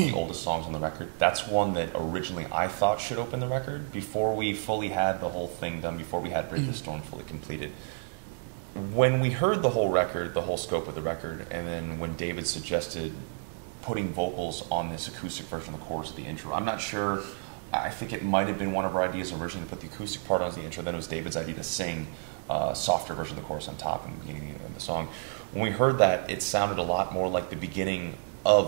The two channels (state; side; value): silent; left; digital silence